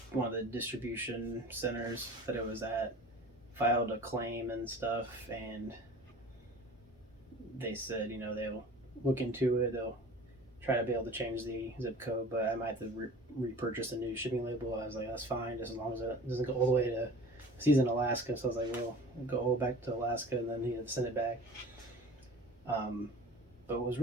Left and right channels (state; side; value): normal; both; correlation 0.41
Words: one of the distribution centers that it was at, filed a claim and stuff, and they said, they'll look into it. They'll try to be able to change the zip code, but I might have to repurchase a new shipping label. I was like, that's fine, just as long as it doesn't go all the way to. He's in Alaska, so I was like, well, I'll go all back to Alaska, and then he had to send it back. But it was